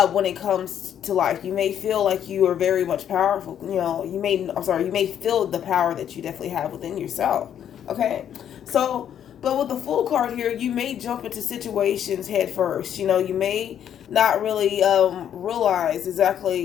it comes to life, you may feel like you are very much powerful. You may feel the power that you definitely have within yourself. Okay, so. But with the Fool card here, you may jump into situations head first. You may not really realize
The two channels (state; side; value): quieter; right; 9.6 dB